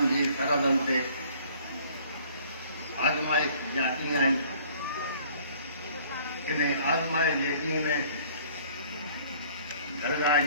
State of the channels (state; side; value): inverted; both; correlation -0.55